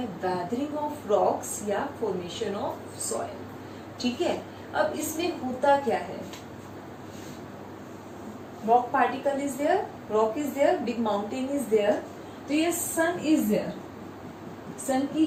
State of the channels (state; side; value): identical; both; correlation 1.00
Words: वेदरिंग ऑफ रॉक्स या फॉर्मेशन ऑफ सॉइल. ठीक है? अब इसमें होता क्या है? Rock particle is there, rock is there, big mountain is there. तो ये सन इज देयर, सन की